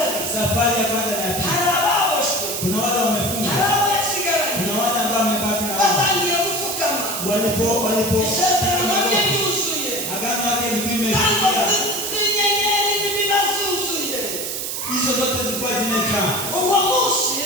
Safari ya kwanza na ya pili, kuna wale wamefunga, kuna wale ambao wamebaki na walipo agano yake limefikia. Hizo zote zilikuwa zimejaa.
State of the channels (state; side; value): noise; right; hiss, 4 dB below the sound